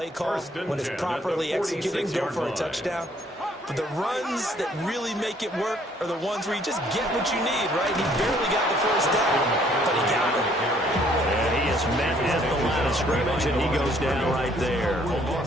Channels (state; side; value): normal; both; correlation 0.63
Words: call, when it's properly executed, go for a touchdown. But the runs that really make it work are the ones where you just get what you need, right? He barely got the first down, but he got it. And he is met at the line of scrimmage, and he goes down right there.